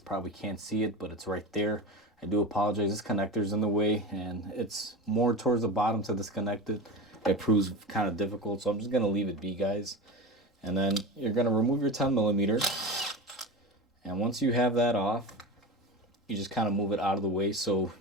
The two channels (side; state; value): both; normal; correlation 0.27